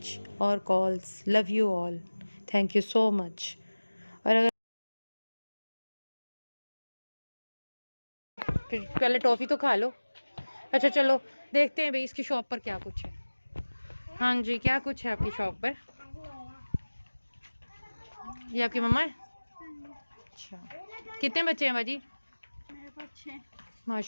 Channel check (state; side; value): inverted; both; correlation -1.00